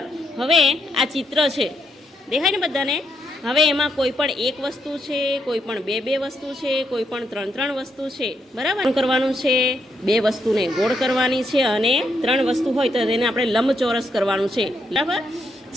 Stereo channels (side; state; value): both; normal; correlation 0.79